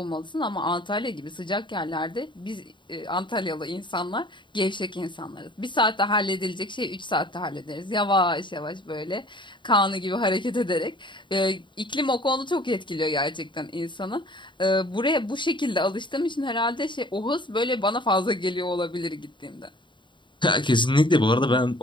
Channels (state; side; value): late; right; 0.23 ms